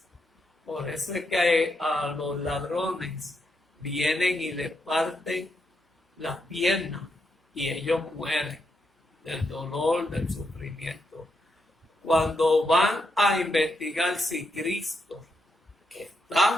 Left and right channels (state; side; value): normal; both; correlation 0.81